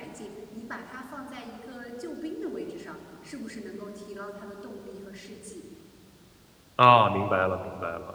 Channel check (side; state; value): both; identical; correlation 1.00